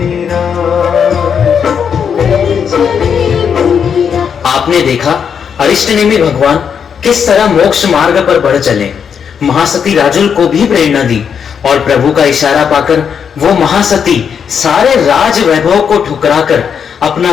आपने देखा अरिष्टनेमी भगवान किस तरह मोक्ष मार्ग पर बढ़ चले। महासती राजुल को भी प्रेरणा दी और प्रभु का इशारा पाकर वो महासती सारे राज वैभव को ठुकराकर अपना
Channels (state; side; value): quieter; right; 7.2 dB